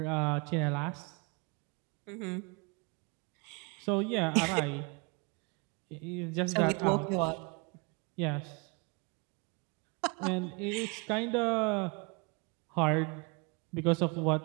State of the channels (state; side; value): quieter; left; 30.8 dB